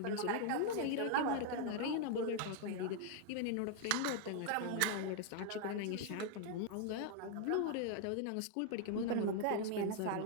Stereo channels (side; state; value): both; different; correlation 0.00